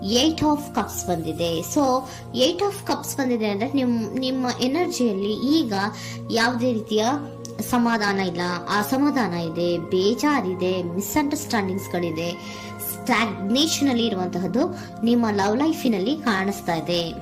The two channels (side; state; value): both; identical; correlation 1.00